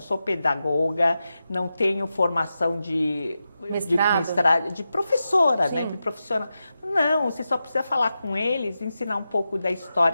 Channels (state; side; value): inverted; both; correlation -0.90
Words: pedagoga, não tenho formação de professora, né? De profissional. Não, você só precisa falar com eles, ensinar um pouco da